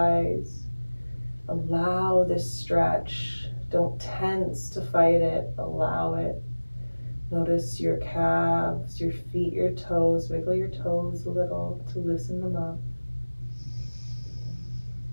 Allow this stretch. Don't tense to fight it, allow it. Notice your calves, your feet, your toes. Wiggle your toes a little to loosen them up.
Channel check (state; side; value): inverted; both; correlation -1.00